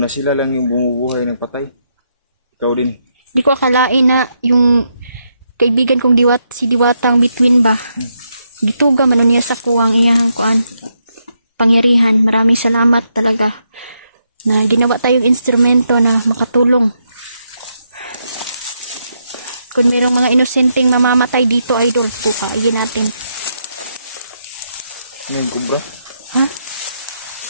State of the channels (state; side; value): inverted; both; correlation -0.80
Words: sila lang yung bumubuhay ng patay. Ikaw din. Di ko akalain na yung kaibigan kong si Diwatang Between ba. Gituga man niya sa kuwang iyahang kuan. kapangyarihan. Maraming salamat talaga na ginawa tayong instrumento na makatulong. Kung mayroong mga inosenteng mamamatay dito, idol, bukayin natin. Ano yung kubra? Ha?